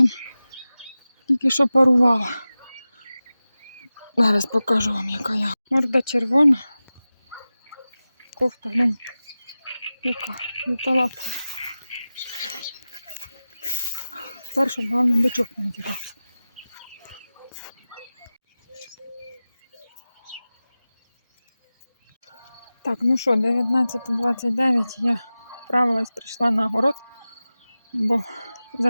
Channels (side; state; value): both; inverted; correlation -0.96